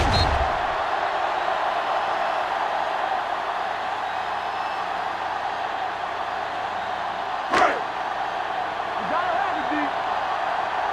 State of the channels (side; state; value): both; identical; correlation 1.00